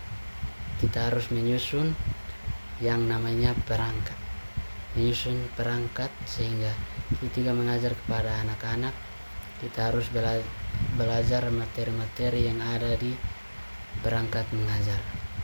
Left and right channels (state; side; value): inverted; both; correlation -1.00